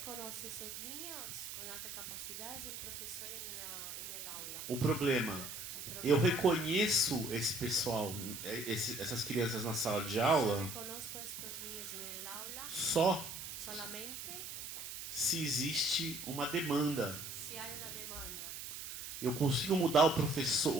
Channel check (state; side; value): noise; right; hiss, 8 dB below the sound